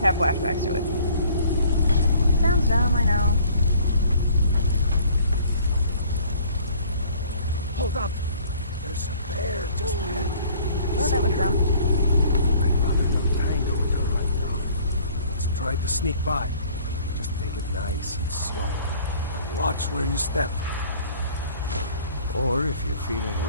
have flashbacks to it. Sounds dumb, I know. Hold up! There's a bear just ahead. Oh, that was dumb. I'd rather not tangle with her right now. Let's try to sneak by. Just take it nice and slow. And watch where you step. Or if you're feeling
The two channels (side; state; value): both; inverted; correlation -0.54